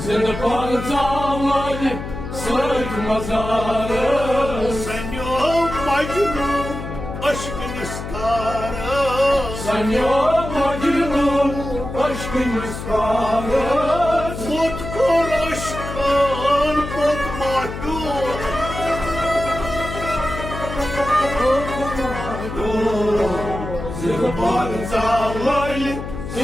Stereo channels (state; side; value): noise; left; hum, 8 dB below the sound